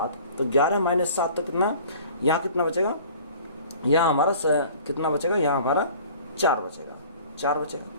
तो 11 माइनस 7 तो कितना, यहाँ कितना बचेगा? यहाँ हमारा कितना बचेगा? यहाँ हमारा 4 बचेगा, 4 बचेगा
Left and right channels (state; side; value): inverted; both; correlation -0.48